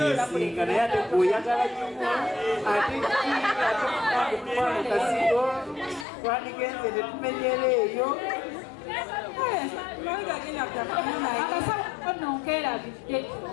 yesinga naye ate gweoyagala nnyo ate tumwana kasigo twandigenze tetumenyera eyo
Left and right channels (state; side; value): drops out; right; at 6.1 s